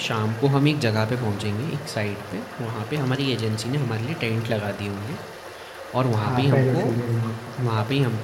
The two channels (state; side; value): identical; both; correlation 1.00